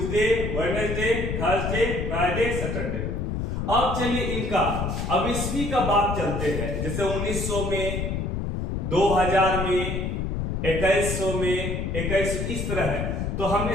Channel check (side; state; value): left; noise; rumble, 2 dB below the sound